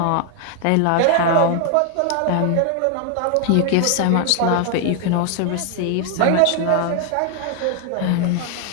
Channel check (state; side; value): different; both; correlation 0.00